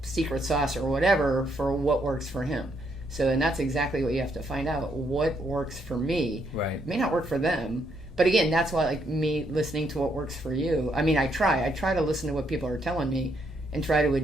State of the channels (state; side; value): normal; both; correlation 0.74